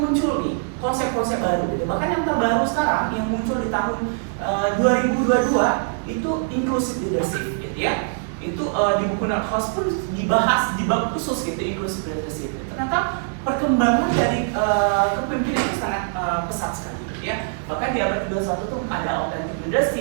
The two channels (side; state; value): left; silent; digital silence